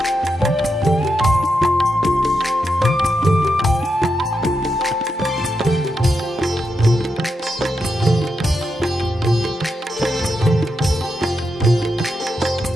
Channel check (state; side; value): normal; both; correlation 0.85